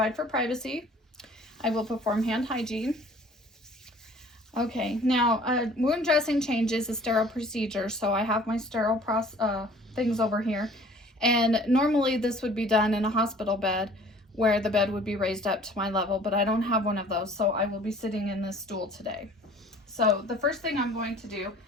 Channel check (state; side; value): normal; both; correlation 0.51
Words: for privacy. I will perform hand hygiene. Okay, now wound dressing change is a sterile procedure, so I have my sterile things over here. And normally this would be done in a hospital bed where the bed would be raised up to my level, but I don't have one of those, so I will be sitting in this stool today. So the first thing I'm going to do